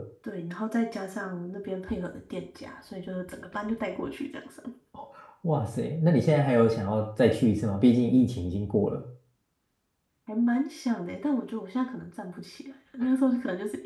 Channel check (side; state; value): both; identical; correlation 1.00